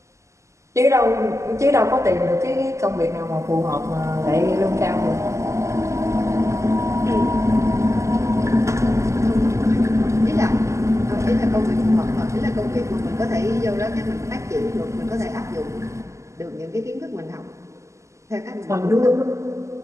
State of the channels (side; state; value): left; late; 0.14 ms